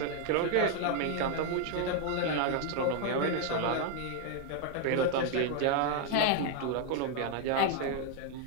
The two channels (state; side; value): different; both; correlation 0.01